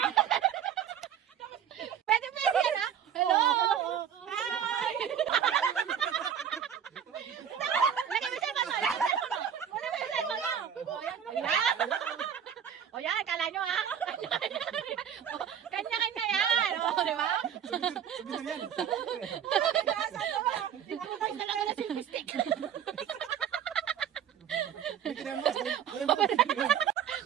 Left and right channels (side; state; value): left; quieter; 8.9 dB